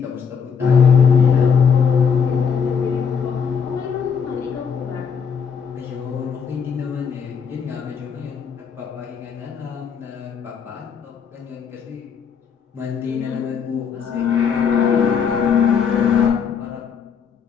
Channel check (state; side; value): quieter; right; 6.6 dB